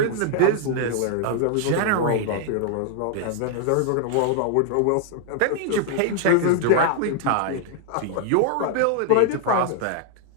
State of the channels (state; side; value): different; both; correlation 0.00